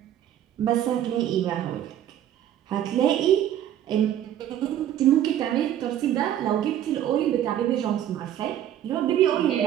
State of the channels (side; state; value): left; quieter; 11.2 dB